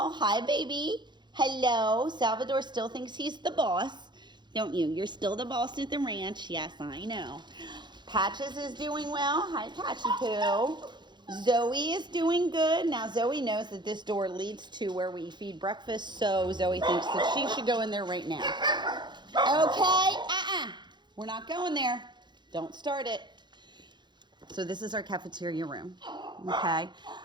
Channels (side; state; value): left; late; 0.21 ms